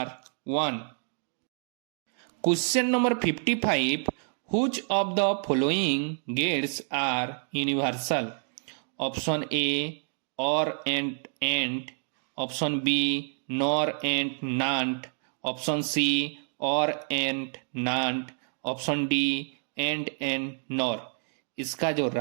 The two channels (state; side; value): silent; left; 57 dB below the other